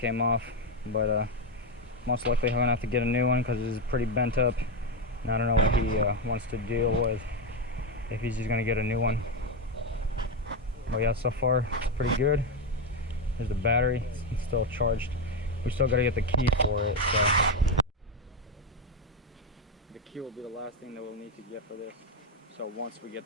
off, but most likely I'm gonna have to get a new one because it's pretty bent up. And I don't know what he wants to deal with, if he's just gonna get a new one. But yeah, so far it's pretty good. There's the battery, it's still charged. We still gotta get the key for it, so the key will be the last thing that we'll need to get for this. So once we get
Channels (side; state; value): both; normal; correlation 0.09